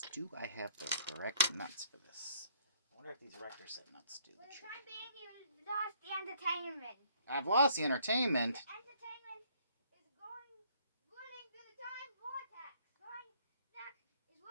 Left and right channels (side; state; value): both; inverted; correlation -0.62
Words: do I have the correct nuts for this? I wonder if these Rector set nuts do the trick. For the time being, you lost the entertainment. I've lost the entertainment. The entertainment is whirling through the time vortex.